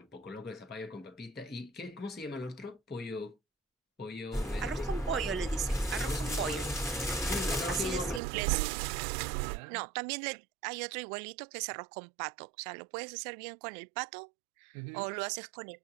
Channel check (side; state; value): left; drops out; at 8.2 s